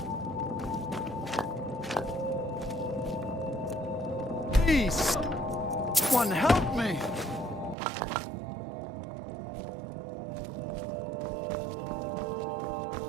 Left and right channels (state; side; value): drops out; left; at 7.8 s